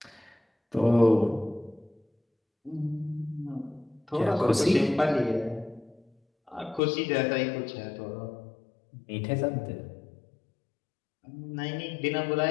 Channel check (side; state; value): right; drops out; at 6.8 s